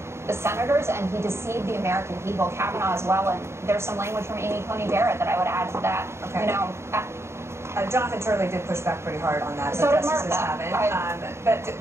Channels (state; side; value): late; left; 0.13 ms